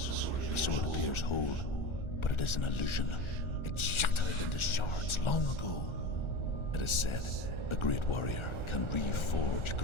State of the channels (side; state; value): right; late; 1.4 ms